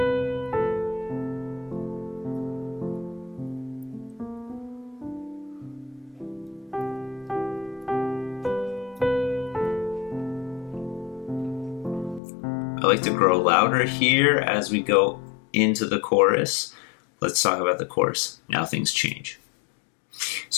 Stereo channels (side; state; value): right; drops out; at 12.2 s